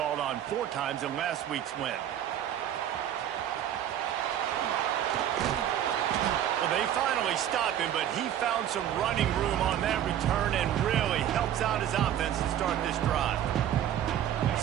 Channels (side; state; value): left; quieter; 10.7 dB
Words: on 4 times in last week's win. Well, they finally stopped him, but he found some running room on that return and really helps out his offense to start this drive.